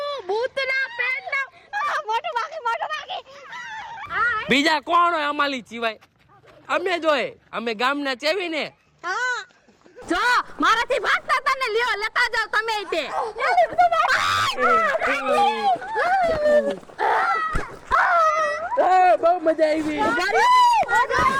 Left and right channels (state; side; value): identical; both; correlation 1.00